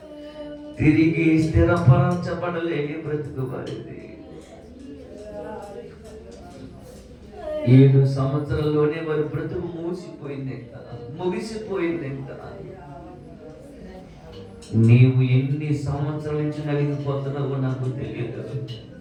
తిరిగి స్థిరపరచబడలేని బ్రతుకు వారిది. 7 సంవత్సరాల్లోనే వారి బ్రతుకు మూసిపోయిందంట, ముగిసిపోయిందంట. నీవు ఎన్ని సంవత్సరాల నుంచి నలిగిపోతున్నావో నాకు తెలియదు.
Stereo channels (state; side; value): identical; both; correlation 1.00